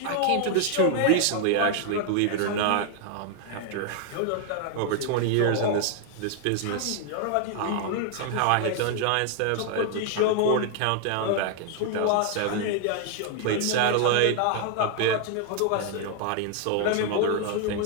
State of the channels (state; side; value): different; both; correlation 0.00